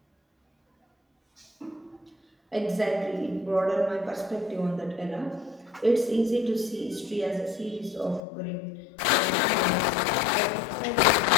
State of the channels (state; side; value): drops out; right; at 8.2 s